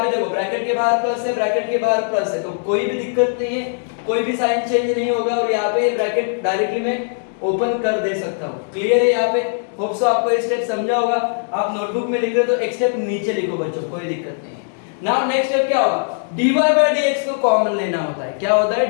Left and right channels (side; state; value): right; silent; digital silence